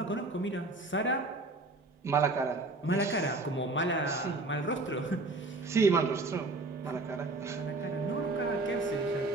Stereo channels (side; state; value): left; quieter; 3.1 dB